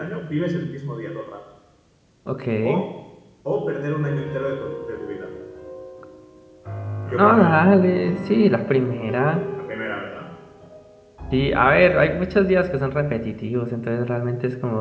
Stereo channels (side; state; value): both; identical; correlation 1.00